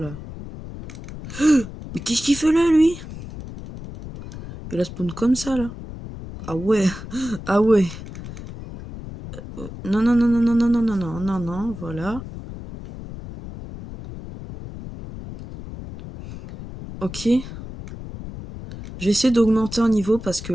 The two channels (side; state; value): left; noise; rumble, 12 dB below the sound